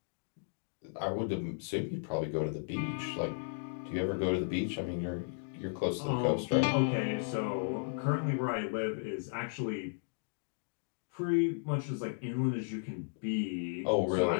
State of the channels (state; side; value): silent; right; digital silence